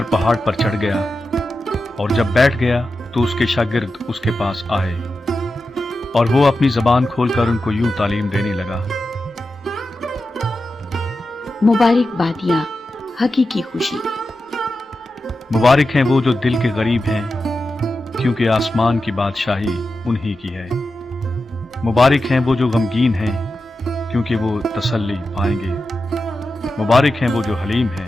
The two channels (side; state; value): both; normal; correlation 0.91